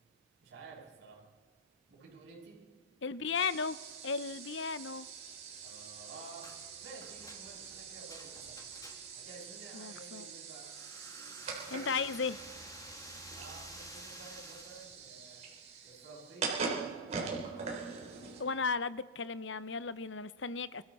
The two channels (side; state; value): both; normal; correlation -0.15